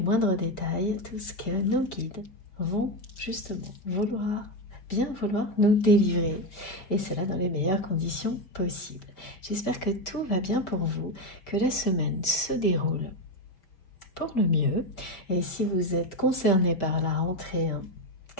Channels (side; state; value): right; late; 5.1 ms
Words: moindres détails tout ce que nos guides vont justement bien vouloir nous délivrer, et cela dans les meilleures conditions possibles. J'espère que tout va bien pour vous, que la semaine se déroule pour le mieux, et si vous êtes concerné par la rentrée,